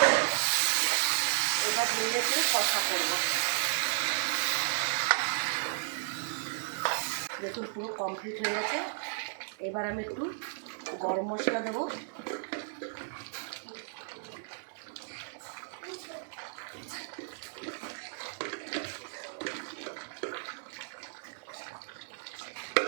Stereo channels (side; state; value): left; silent; digital silence